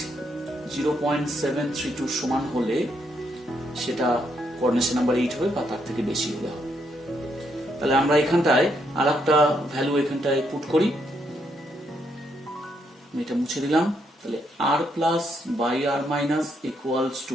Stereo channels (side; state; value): both; normal; correlation 0.76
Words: 0.732 সমান হলে সেটা কোঅর্ডিনেশন নাম্বার 8 হবে, বা তার থেকে বেশি হলে হবে। তাহলে আমরা এখানটায় আর একটা ভ্যালু এখানটায় পুট করি, এটা মুছে দিলাম। তাহলে r plus by r minus equals